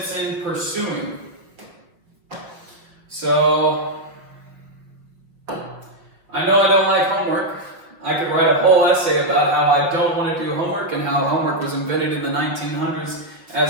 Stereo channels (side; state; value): left; late; 5.8 ms